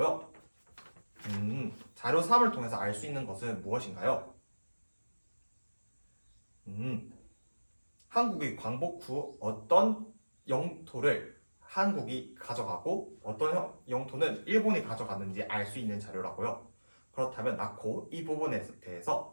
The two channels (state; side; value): inverted; both; correlation -1.00